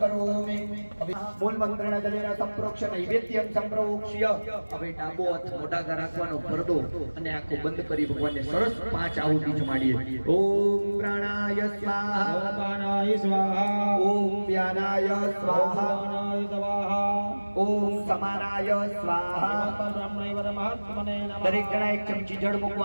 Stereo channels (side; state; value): both; inverted; correlation -1.00